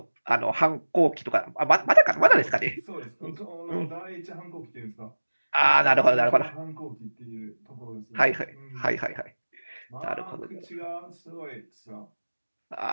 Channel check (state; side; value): inverted; both; correlation -1.00